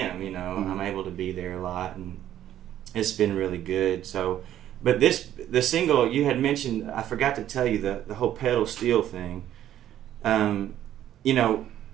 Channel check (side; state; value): left; quieter; 11.7 dB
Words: You know, I'm able to be there a lot, and it's been really good. So, but the single you had mentioned, I forgot to tell you the whole pedal steel thing. You know,